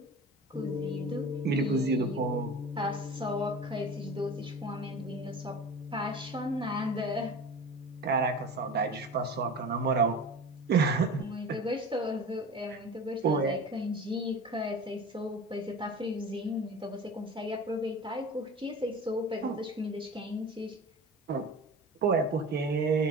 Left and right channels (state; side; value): normal; both; correlation 0.36